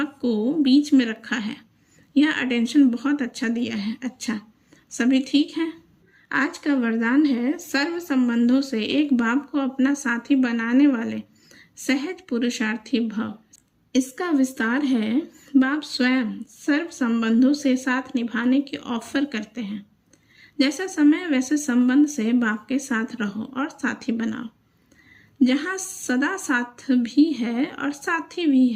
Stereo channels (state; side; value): identical; both; correlation 1.00